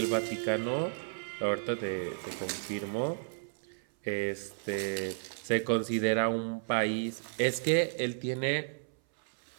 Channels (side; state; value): left; silent; 56 dB below the other